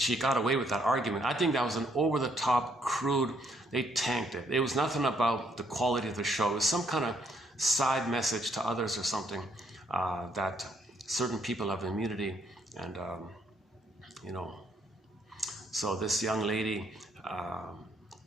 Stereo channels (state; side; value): normal; both; correlation 0.71